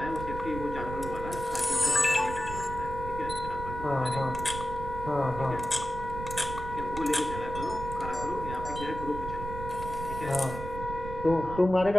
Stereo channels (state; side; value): noise; right; rumble, 8 dB below the sound